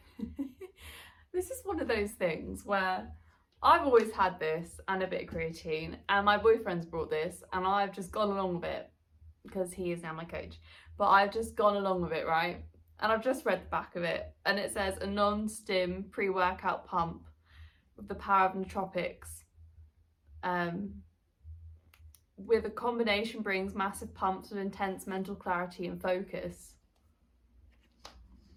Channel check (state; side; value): identical; both; correlation 1.00